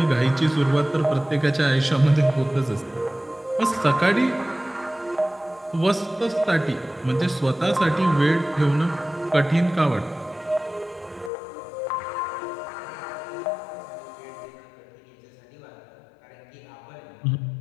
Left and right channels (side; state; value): right; drops out; at 11.3 s